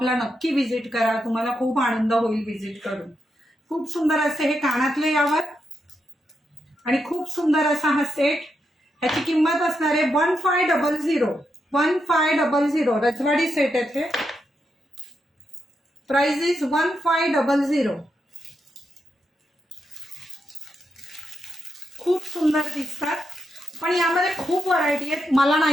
नक्की व्हिजिट करा, तुम्हाला खूप आनंद होईल व्हिजिट करून. खूप सुंदर असे हे कानातले यावर आणि खूप सुंदर असा हा सेट. ह्याची किंमत असणार आहे 1500. 1500 रजवाडी सेट आहे. Price is 1500. खूप सुंदर दिसतात पण यामध्ये खूप व्हरायटी आहेत. मला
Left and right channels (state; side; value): normal; both; correlation 0.84